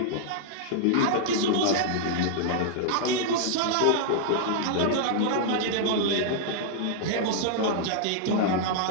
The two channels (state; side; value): different; both; correlation -0.01